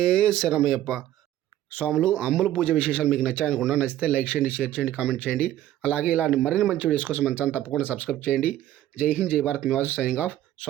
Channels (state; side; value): quieter; left; 13.1 dB